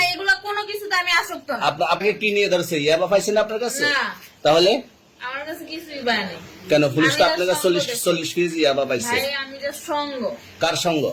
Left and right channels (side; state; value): both; identical; correlation 1.00